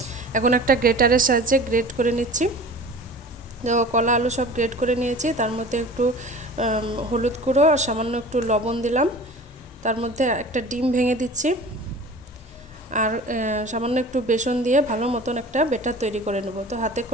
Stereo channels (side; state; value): both; normal; correlation 0.40